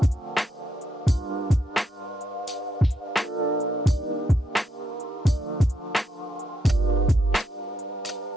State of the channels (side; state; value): both; normal; correlation 0.78